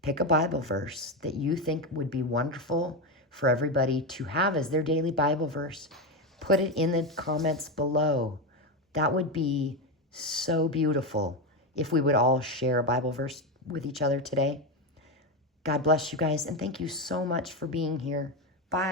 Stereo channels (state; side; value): normal; both; correlation 0.12